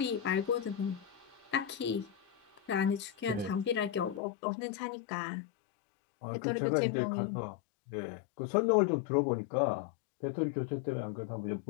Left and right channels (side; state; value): right; drops out; at 4.2 s